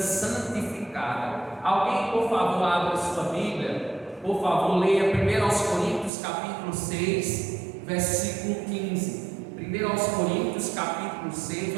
Alguém, por favor, abra sua Bíblia por favor, leia 1 Coríntios capítulo 6, versículo 15. 1 Coríntios capítulo 6,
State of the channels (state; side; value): drops out; left; at 6.1 s